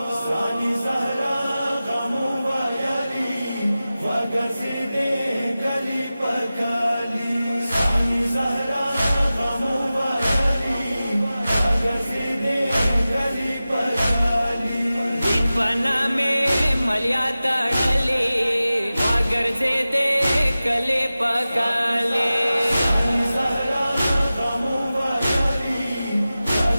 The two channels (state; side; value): inverted; both; correlation -0.95